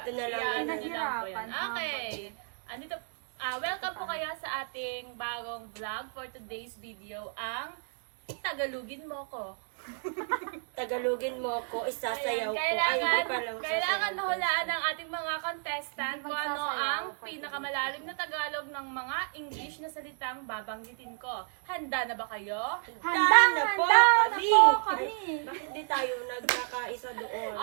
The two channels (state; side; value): silent; left; 57 dB below the other